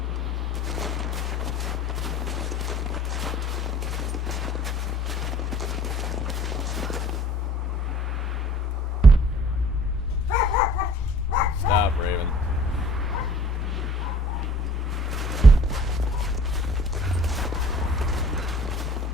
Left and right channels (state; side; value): normal; both; correlation 0.51